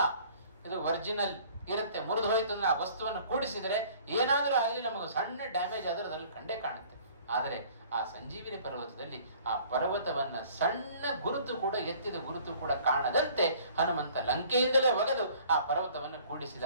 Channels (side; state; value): both; inverted; correlation -0.52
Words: ಇದು ಒರಿಜಿನಲ್ ಇರುತ್ತೆ. ಮುರಿದು ಹೋಯ್ತು ಅಂದ್ರೆ ಆ ವಸ್ತುವನ್ನು ಕೂಡಿಸಿದರೆ ಏನಾದರೂ ಆಗಲಿ ನಮಗೆ ಸಣ್ಣ ಡ್ಯಾಮೇಜ್ ಆದರೂ ಅದರಲ್ಲಿ ಕಂಡೇ ಕಾಣುತ್ತೆ. ಆದರೆ ಆ ಸಂಜೀವಿನಿ ಪರ್ವತದಲ್ಲಿ ಆ ಪರ್ವತವನ್ನ ಸಣ್ಣ ಗುರುತು ಕೂಡ, ಎತ್ತಿದ ಗುರುತು ಕೂಡ ಕಾಣದಂತೆ ಹನುಮಂತ ಲಂಕೆಯಿಂದಲೇ ಒಗೆದು ಆ ಪರ್ವತವನ್ನು ಕೂಡಿಸಿದ